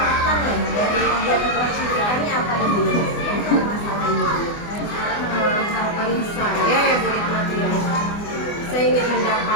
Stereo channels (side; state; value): right; late; 24 ms